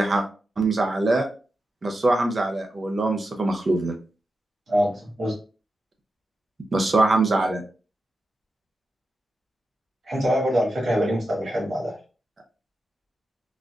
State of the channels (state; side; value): normal; both; correlation 0.89